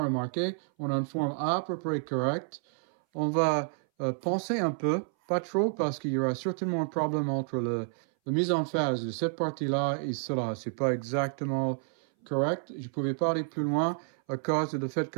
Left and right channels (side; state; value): left; silent; 58 dB below the other